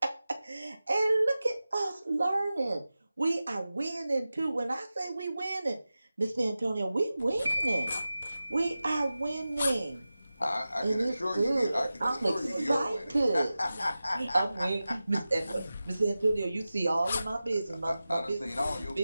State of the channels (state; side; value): inverted; both; correlation -0.95